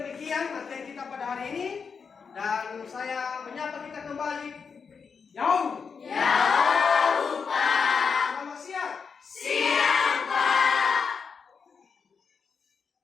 materi kita pada hari ini, dan saya menyapa kita kembali. Jauh.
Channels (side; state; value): right; quieter; 5.8 dB